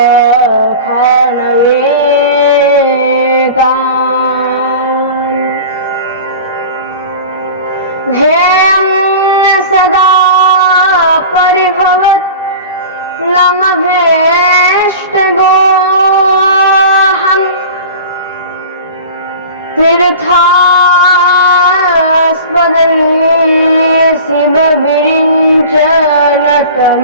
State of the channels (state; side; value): inverted; both; correlation -0.37